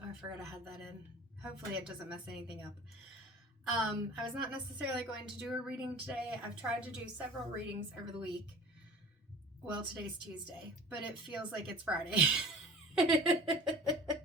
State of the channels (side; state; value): both; normal; correlation 0.42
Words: oh, I forgot I had that in. Hopefully it doesn't mess anything up. I was not necessarily going to do a reading today. I've tried to do several readings over the week. Well, today's Tuesday, but it feels like it's Friday.